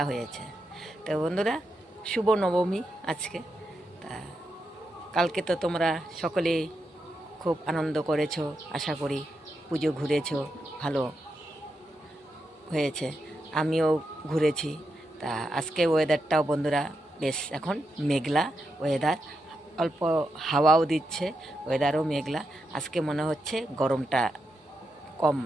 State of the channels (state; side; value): normal; both; correlation 0.85